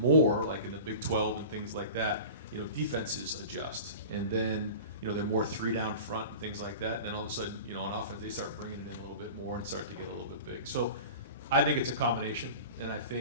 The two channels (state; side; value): inverted; both; correlation -0.36